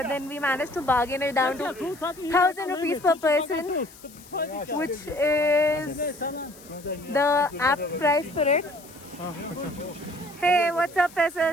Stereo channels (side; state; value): left; noise; hiss, 21 dB below the sound